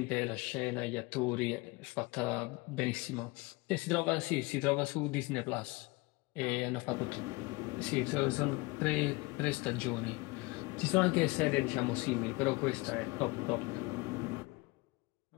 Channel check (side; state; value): right; quieter; 24.4 dB